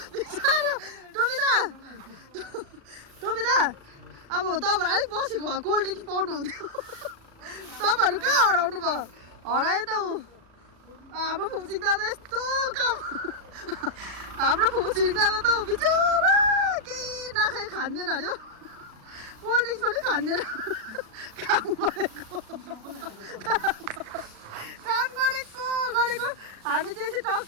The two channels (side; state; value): left; late; 37 ms